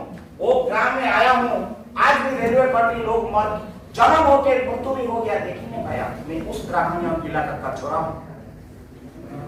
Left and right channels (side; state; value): both; identical; correlation 1.00